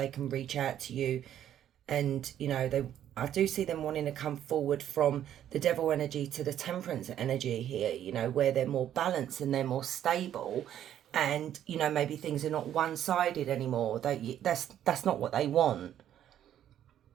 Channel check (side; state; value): left; quieter; 10.8 dB